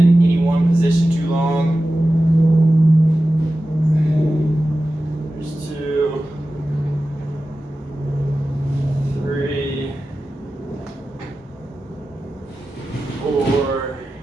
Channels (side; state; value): both; normal; correlation 0.94